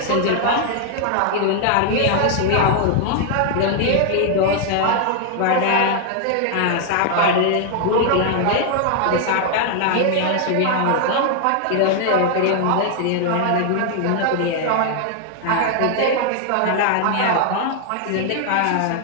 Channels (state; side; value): different; both; correlation 0.00